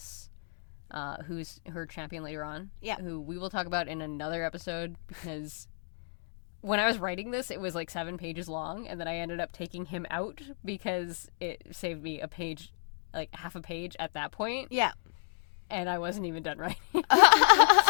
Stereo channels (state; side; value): silent; right; digital silence